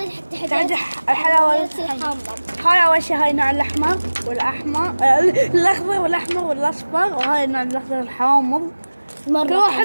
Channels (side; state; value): both; inverted; correlation -1.00